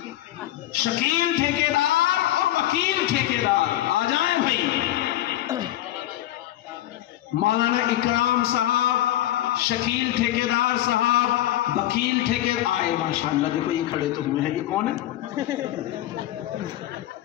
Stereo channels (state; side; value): quieter; right; 14.3 dB